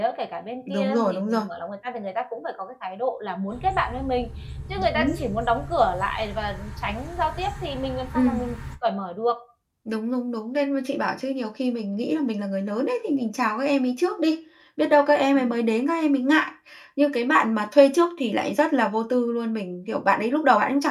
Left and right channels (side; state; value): both; identical; correlation 1.00